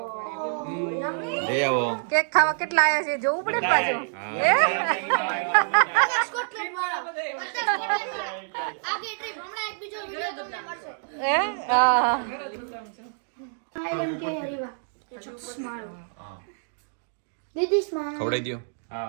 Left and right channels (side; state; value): left; silent; digital silence